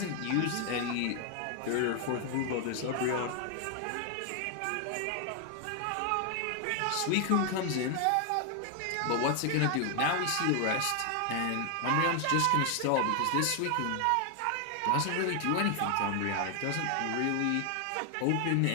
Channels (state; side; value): different; both; correlation 0.00